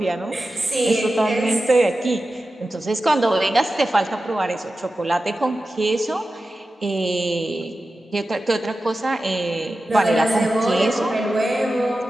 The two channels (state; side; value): normal; both; correlation 0.93